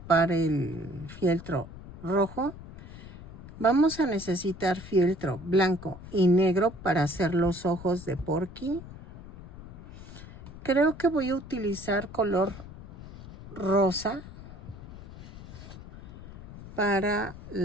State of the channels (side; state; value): left; noise; rumble, 15 dB below the sound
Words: el fieltro rojo. Vamos a necesitar fieltro blanco y negro para hacer los ojos de Porky. Creo que voy a utilizar color rosa para